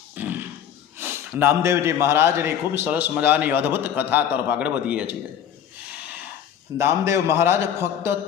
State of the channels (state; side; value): quieter; right; 9.2 dB